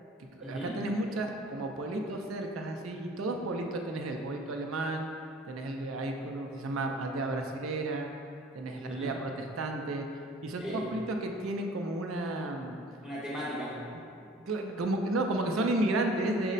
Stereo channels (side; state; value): both; normal; correlation 0.49